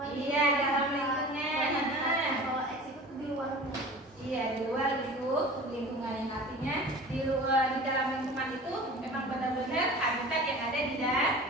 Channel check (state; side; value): normal; both; correlation 0.39